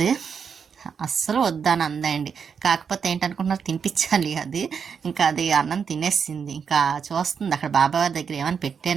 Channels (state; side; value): quieter; left; 6.5 dB